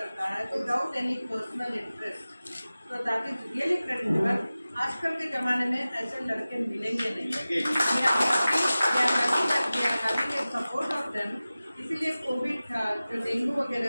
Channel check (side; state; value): both; inverted; correlation -0.97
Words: है विदाउट एनी पर्सनल इंटरेस्ट। तो दैट इज रियली क्रेडिटेबल। आजकल के ज़माने में ऐसे लड़के मिलेंगे नहीं। Support of them. इसीलिए कोविड था, जो डेंगू वगैरह